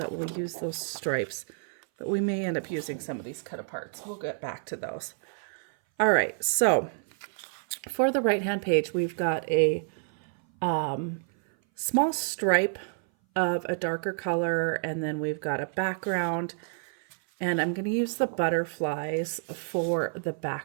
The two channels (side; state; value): left; silent; 57 dB below the other